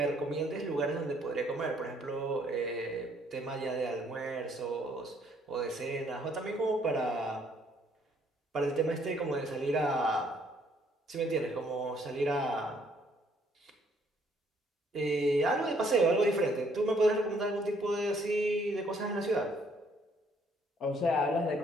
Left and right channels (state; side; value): normal; both; correlation 0.65